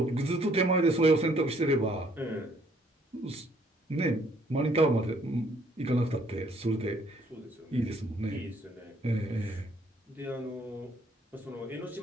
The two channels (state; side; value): normal; both; correlation 0.64